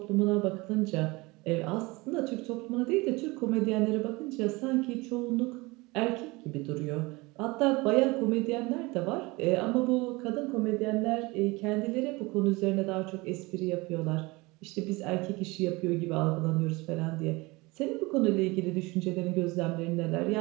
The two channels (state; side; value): quieter; left; 23.7 dB